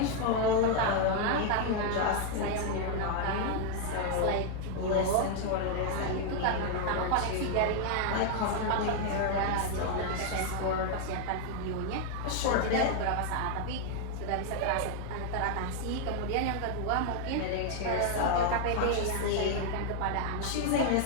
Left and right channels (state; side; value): different; both; correlation 0.00